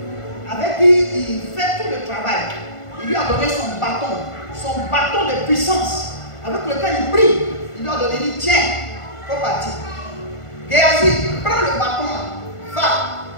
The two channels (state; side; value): late; right; 1.5 ms